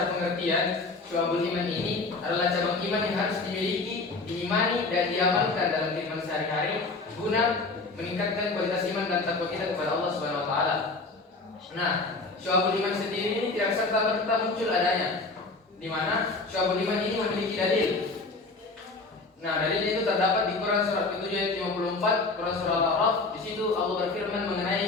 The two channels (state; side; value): quieter; right; 3.5 dB